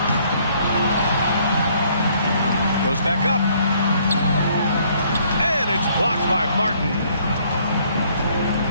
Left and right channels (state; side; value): inverted; both; correlation -0.64